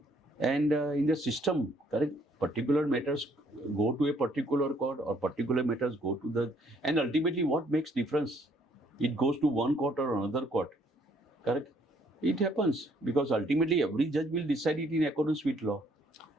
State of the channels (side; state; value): both; normal; correlation 0.65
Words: And in the system, correct, particular matters go to a particular court or particular matters go to the... And ultimately what makes difference? It goes to one court or another court, correct? It happens because ultimately every judge will decide it in accordance with law.